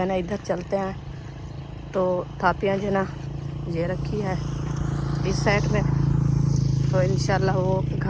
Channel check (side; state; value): both; identical; correlation 1.00